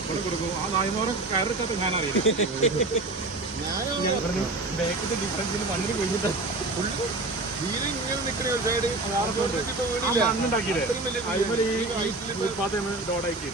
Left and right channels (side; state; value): left; quieter; 3.0 dB